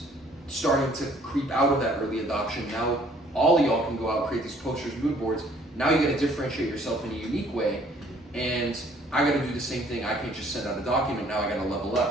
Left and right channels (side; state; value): both; normal; correlation 0.59